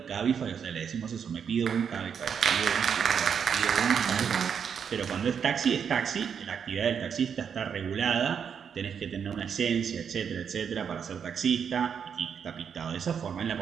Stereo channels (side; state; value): left; quieter; 7.3 dB